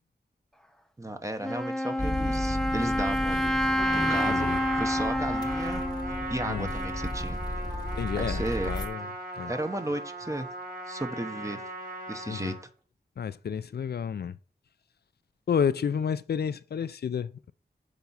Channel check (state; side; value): normal; both; correlation 0.71